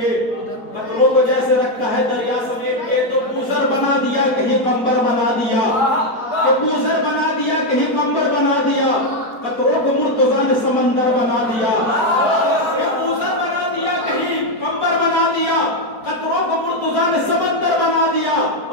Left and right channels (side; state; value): right; late; 4.3 ms